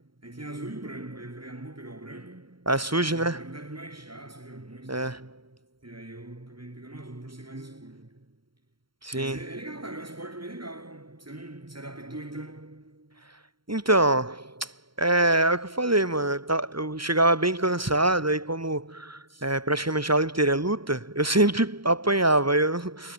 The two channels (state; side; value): late; left; 0.73 ms